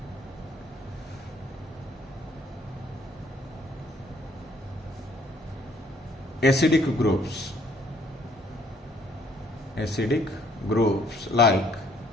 acidic groups. Acidic groups like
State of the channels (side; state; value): both; normal; correlation 0.64